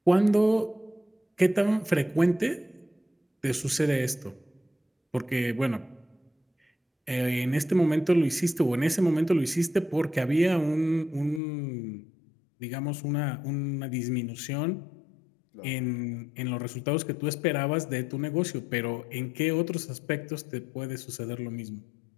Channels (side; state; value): right; drops out; at 11.4 s